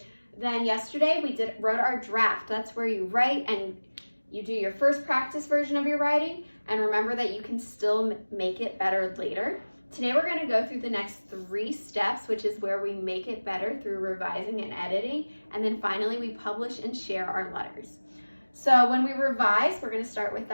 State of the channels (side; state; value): both; inverted; correlation -1.00